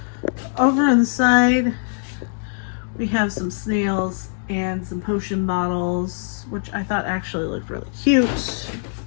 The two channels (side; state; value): right; silent; digital silence